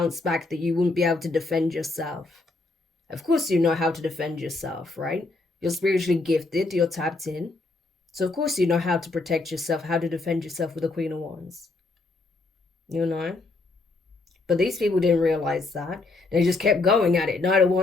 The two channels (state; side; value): quieter; right; 3.4 dB